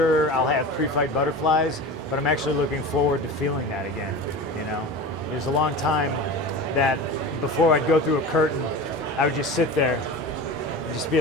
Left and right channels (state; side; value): normal; both; correlation 0.31